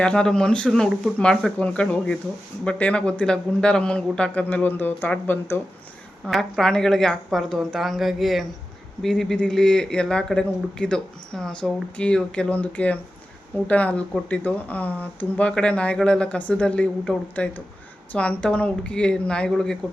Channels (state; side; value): normal; both; correlation 0.93